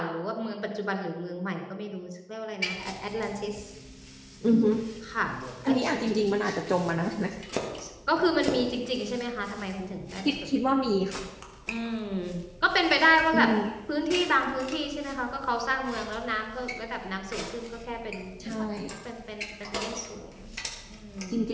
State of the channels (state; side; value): identical; both; correlation 1.00